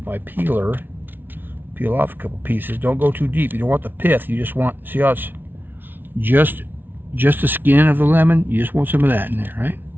my peeler, peel off a couple pieces. Don't go too deep. You don't want the pith. You just want, see how it's just the skin of the lemon. You just want some of that in there, right?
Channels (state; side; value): late; left; 0.097 ms